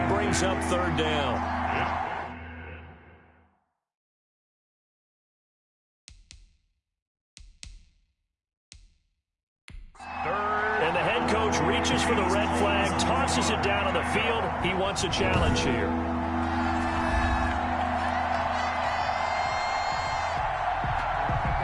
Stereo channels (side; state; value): both; identical; correlation 1.00